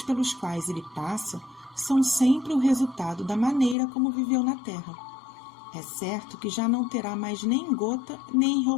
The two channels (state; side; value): drops out; right; at 3.8 s